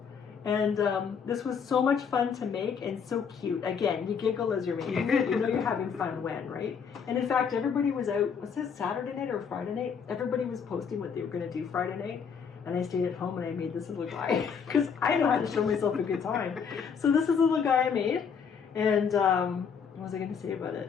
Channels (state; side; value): quieter; right; 6.6 dB